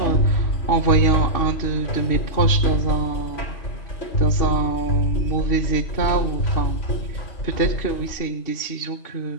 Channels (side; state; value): right; late; 2.7 ms